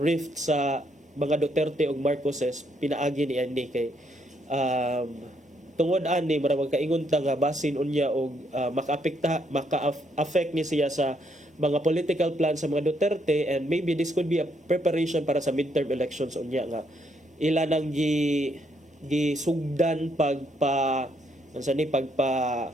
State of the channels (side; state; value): both; normal; correlation 0.73